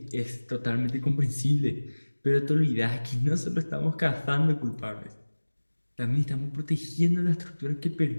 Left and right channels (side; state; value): both; inverted; correlation -1.00